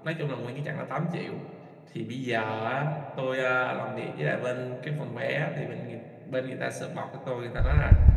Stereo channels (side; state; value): both; identical; correlation 1.00